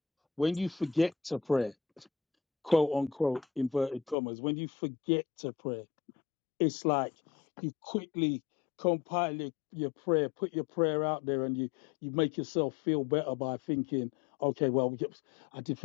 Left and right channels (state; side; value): drops out; right; at 4.2 s